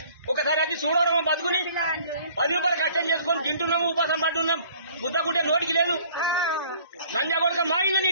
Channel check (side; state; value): both; inverted; correlation -0.54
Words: ఒకసారి అది చూడడం బతుకుని 10 రూపాయలు కష్టం చేసుకొని తింటున్నాము, ఉపాసం పడుతున్నాం. ముద్దకుంటే నోటికి లేదు. లంజా కొడుక మా ఇల్లు